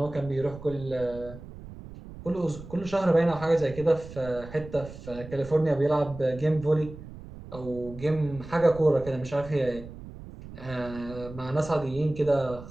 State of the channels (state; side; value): noise; right; rumble, 14 dB below the sound